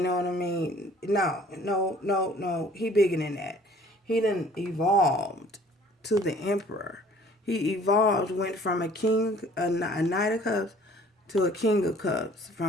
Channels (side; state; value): both; normal; correlation 0.54